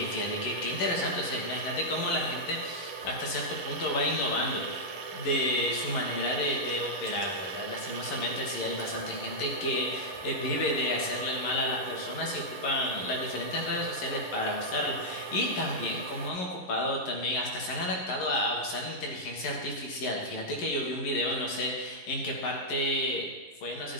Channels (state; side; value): late; right; 11 ms